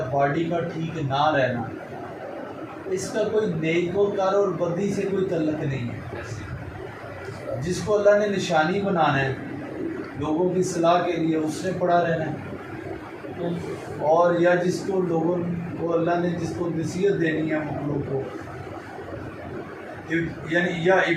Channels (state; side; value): identical; both; correlation 1.00